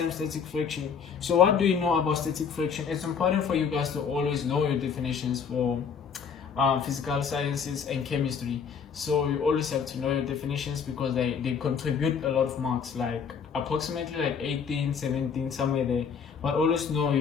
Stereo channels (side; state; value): right; quieter; 6.6 dB